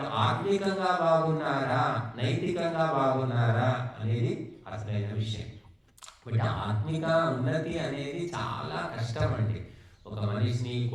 ఆత్మికంగా బాగున్నారా, నైతికంగా బాగున్నారా అనేది అసలైన విషయం. బట్ ఆత్మిక ఉన్నతి అనేది చాలా కష్టం అండి. ఒక మనిషిని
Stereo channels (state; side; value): identical; both; correlation 1.00